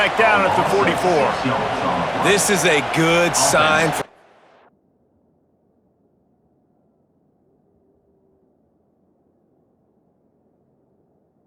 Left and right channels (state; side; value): identical; both; correlation 1.00